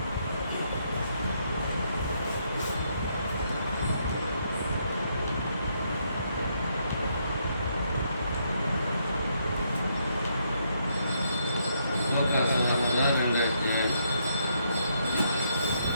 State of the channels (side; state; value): both; inverted; correlation -0.75